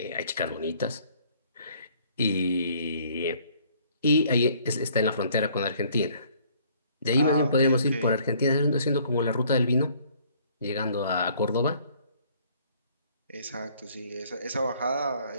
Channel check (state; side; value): inverted; both; correlation -0.59